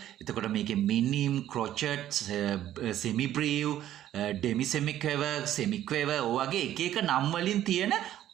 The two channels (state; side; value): quieter; left; 12.3 dB